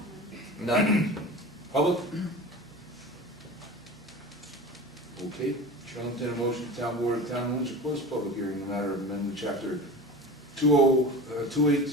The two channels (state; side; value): normal; both; correlation 0.33